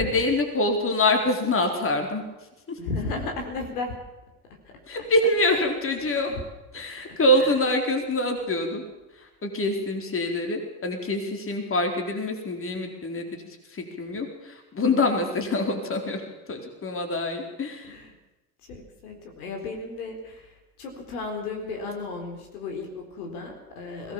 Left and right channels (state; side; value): normal; both; correlation -0.08